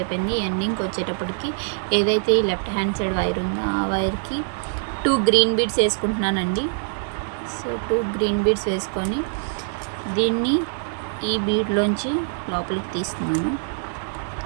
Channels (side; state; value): left; silent; digital silence